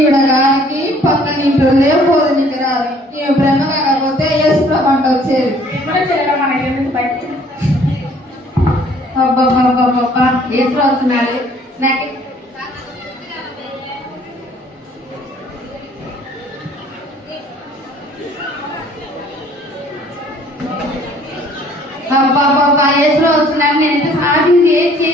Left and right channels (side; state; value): both; normal; correlation 0.57